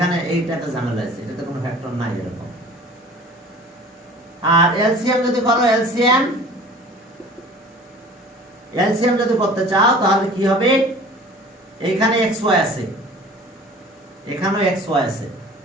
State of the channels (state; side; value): normal; both; correlation 0.45